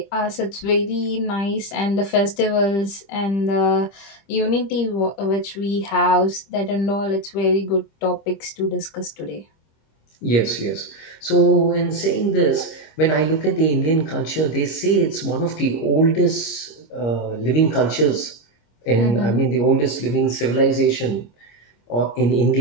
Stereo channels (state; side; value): late; right; 25 ms